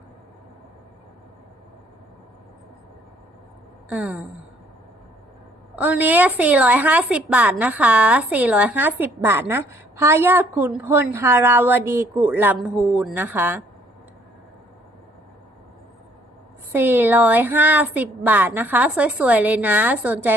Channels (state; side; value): normal; both; correlation 0.63